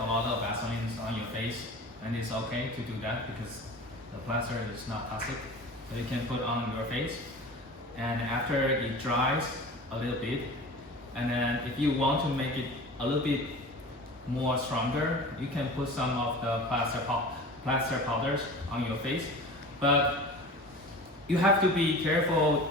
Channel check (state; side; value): normal; both; correlation 0.37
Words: lot of Vaseline on your face, and it's okay to do that because the plaster is not toxic. So you can put on your face, and after it dries a little bit, and then if you want to make it a little bit more stronger, you can put some of the plaster powders on your face. But you have to be careful,